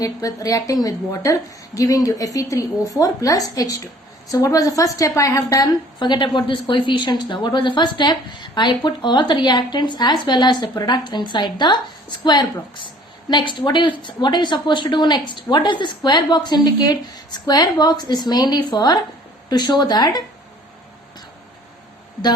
water, giving you Fe3O4 plus H2. So what was the first step I have done? Forget about this coefficients now. What was the first step? I put all the reactants as well as the products inside the square box. Next, what are you supposed to do next? What does the square box indicate? Square box is mainly to show that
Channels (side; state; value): both; normal; correlation 0.53